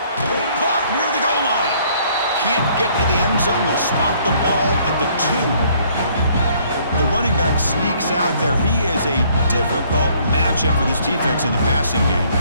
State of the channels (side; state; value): both; inverted; correlation -0.62